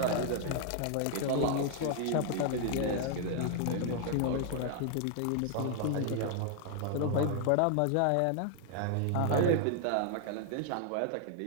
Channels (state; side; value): different; both; correlation 0.00